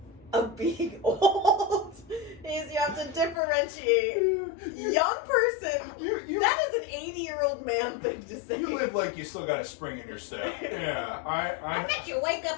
of being old. is you have to differentiate young person. That is an 80-year-old man thing to say. You live like you still got a spring in your step. Yeah, I bet you wake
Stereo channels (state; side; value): drops out; right; at 3.4 s